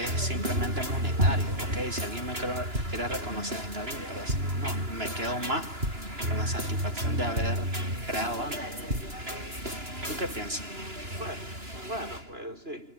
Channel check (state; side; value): late; left; 2.9 ms